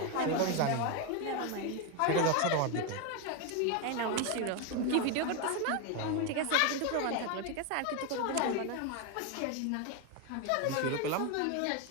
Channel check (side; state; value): both; different; correlation 0.02